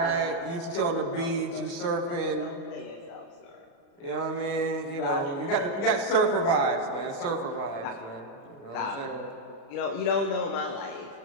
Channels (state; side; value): late; right; 36 ms